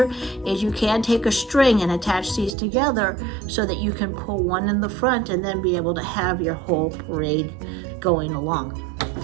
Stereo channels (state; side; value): drops out; left; at 2.6 s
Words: is you can take a string and attach these together so that you can pull one in the front and then be able to have your whole parade going along.